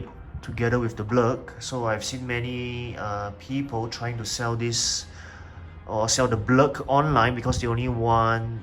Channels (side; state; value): both; identical; correlation 1.00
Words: together with the blurg. So I've seen many people trying to sell this or sell the blurg online because they only want